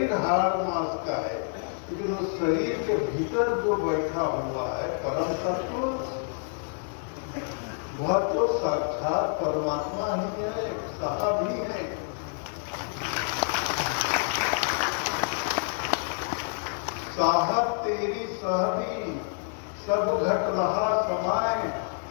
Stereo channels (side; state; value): right; silent; 59 dB below the other